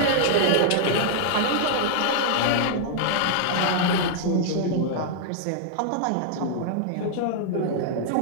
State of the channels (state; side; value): different; both; correlation -0.01